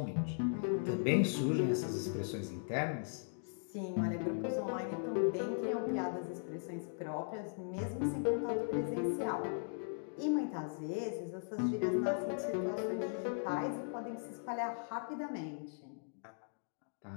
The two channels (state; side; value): silent; right; digital silence